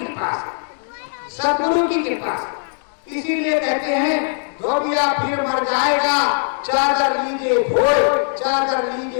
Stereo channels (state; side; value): silent; right; digital silence